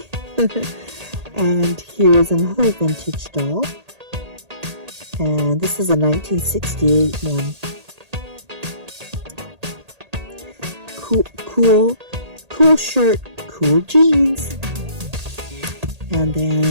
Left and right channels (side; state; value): left; late; 1.8 ms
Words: And here's another vintage doll. And this is a 1968 one. Cool shirt, cool jeans. And